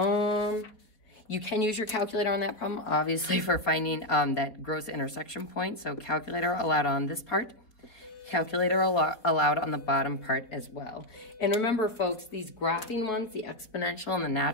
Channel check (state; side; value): late; right; 4.0 ms